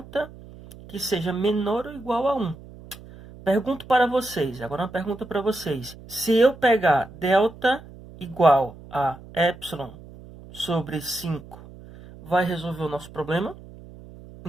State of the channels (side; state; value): right; noise; hum, 18 dB below the sound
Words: que seja menor ou igual a 1. Pergunto para vocês, agora uma pergunta para vocês. Se eu pegar delta igual a epsilon sobre 5, vai resolver o nosso problema?